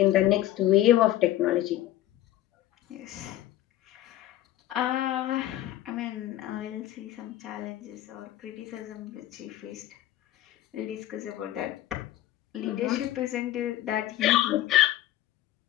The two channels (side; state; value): right; quieter; 14.0 dB